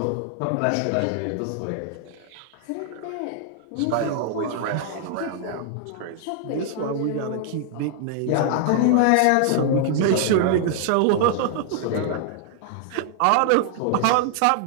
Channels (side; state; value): both; different; correlation 0.00